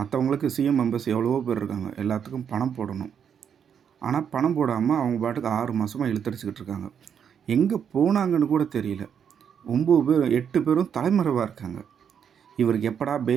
சிஎம் மெம்பர்ஸ் எவ்வளவோ பேர் இருக்காங்க, எல்லாத்துக்கும் பணம் போடணும். ஆனால் பணம் போடாமல் அவங்க பாட்டுக்கு 6 மாதமாக இழுத்தடிச்சிக்கிட்டு இருக்காங்க. எங்கே போனாங்கன்னு கூட தெரியல. 9 பேர் 8 பேரும் தலைமறைவாக இருக்காங்க. இவருக்கு எப்படா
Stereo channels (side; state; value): left; quieter; 7.8 dB